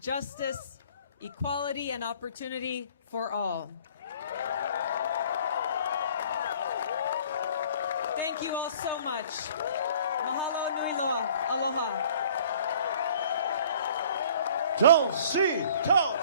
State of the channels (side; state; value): both; inverted; correlation -0.53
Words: equality, and opportunity for all. Thank you all so much. Mahalo nui loa. Aloha. Tulsi,